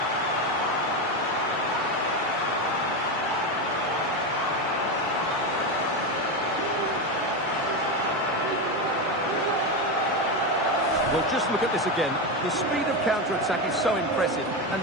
Well, just look at this again. The speed of counter-attack is so impressive, and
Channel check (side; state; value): both; normal; correlation 0.14